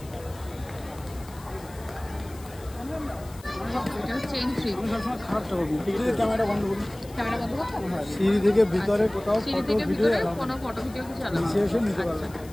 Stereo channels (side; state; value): left; noise; hiss, 22 dB below the sound